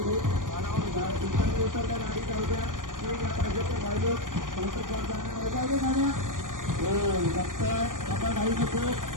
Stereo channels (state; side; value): late; left; 0.89 ms